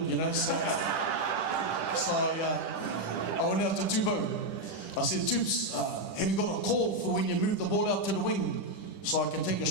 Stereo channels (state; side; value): late; right; 10 ms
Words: you know. So I went out to Tupou. I said, Toops, have you got a call for when you move the ball out to the wing so I can take a